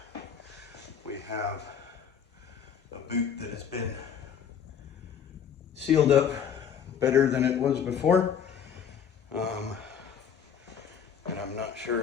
we have a boot that has been sealed up better than it was before, and I'm not sure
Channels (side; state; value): right; quieter; 7.8 dB